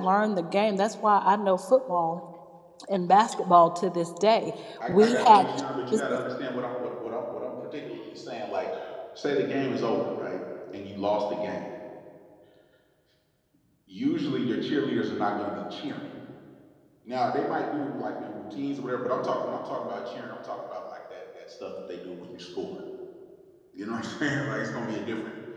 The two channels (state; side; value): identical; both; correlation 1.00